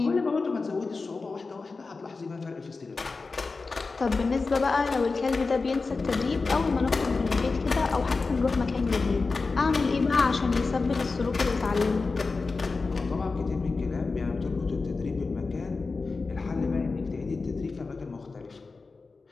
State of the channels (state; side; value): quieter; right; 4.1 dB